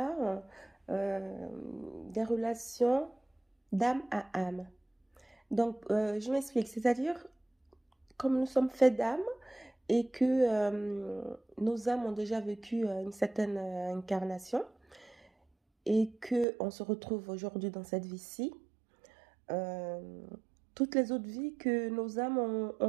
des relations d'âme à âme. Je m'explique, c'est-à-dire comme nous sommes faits d'âme et que nos âmes ont déjà vécu une certaine incarnation et qu'on se retrouve aujourd'hui dans cette vie-ci. Toutes les autres vies que nos âmes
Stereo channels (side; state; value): left; drops out; at 16.4 s